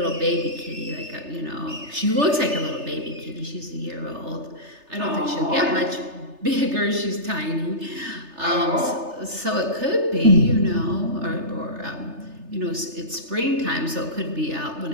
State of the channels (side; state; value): left; late; 3.3 ms